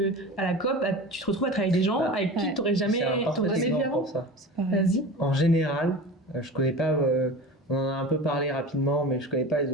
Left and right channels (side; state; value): both; normal; correlation 0.33